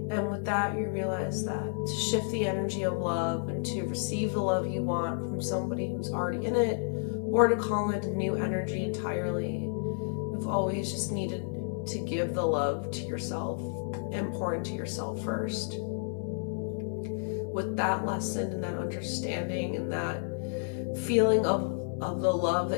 And with that, you realize that to shift the energy of love and to receive the love you want from somebody who's already in it, or to call in new energy entirely, you've always just needed to give the love to yourself and pour into yourself first. with that lesson and that understanding and that feeling of the love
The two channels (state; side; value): silent; right; 57 dB below the other